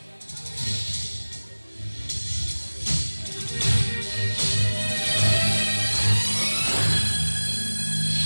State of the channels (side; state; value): both; inverted; correlation -1.00